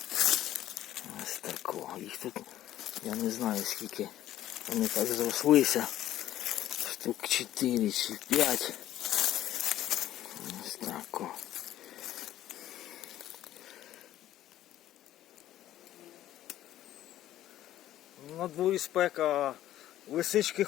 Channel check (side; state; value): right; quieter; 13.2 dB